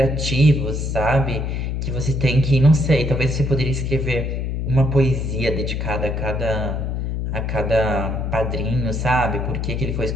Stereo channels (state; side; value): noise; left; hum, 2 dB below the sound